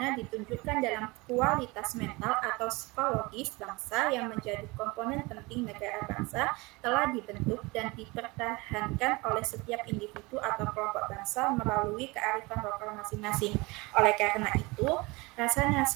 ditunjukkan dalam kualitas mental atau psikologis bangsa yang menjadi komponen penting negara bangsa telah dibentuk dan dipertahankan oleh setiap individu atau kelompok bangsa melalui kearifan lokal masing-masing. Oleh karena itu, rasa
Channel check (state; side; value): quieter; left; 24.4 dB